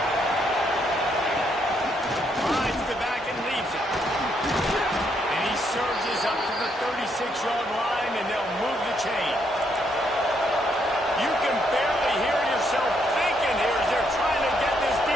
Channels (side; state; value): both; normal; correlation 0.74